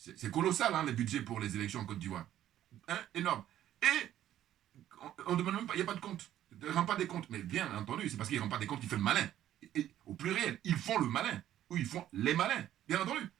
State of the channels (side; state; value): left; quieter; 12.1 dB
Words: colossal, hein, les budgets pour les élections en Côte d'Ivoire. Hein, énorme. Et on ne demande même pas, il n'y a pas de compte. Il ne rend pas des comptes. Mais bien entendu, c'est parce qu'il ne rend pas des comptes qu'il fait le malin. Et au pluriel, ils font le malin. Ou ils font les malins. Bien entendu.